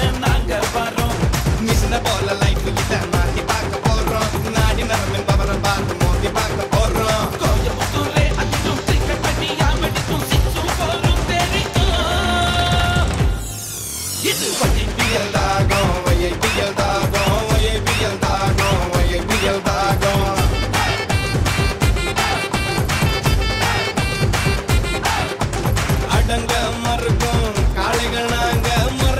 நாங்க வரோம். மிஷின போல லைஃப் கிட்ட மாத்தி பார்க்க போறோம். நாடி நரம்பின் பவர பார்த்து மோதி பார்க்க போறோம். கோயம்புத்தூரே அதிலும் கிரிக்கெட் பண்ணி யாமடிக்கும் சிக்ஸும் போரும் தெரியும். இது YPL தாகம், YPL தாகம், YPL தாகம், YPL தாகம். அடங்க மறுக்கும் காளைகள் நாங்க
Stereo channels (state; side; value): identical; both; correlation 1.00